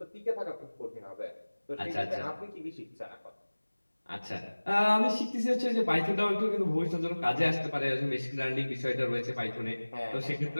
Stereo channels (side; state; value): both; inverted; correlation -1.00